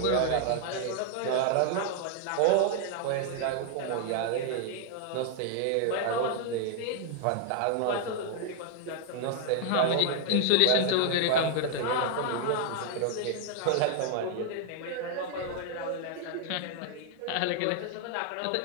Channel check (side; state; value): both; different; correlation 0.00